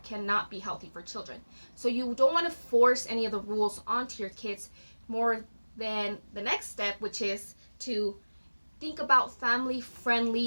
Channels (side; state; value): both; inverted; correlation -1.00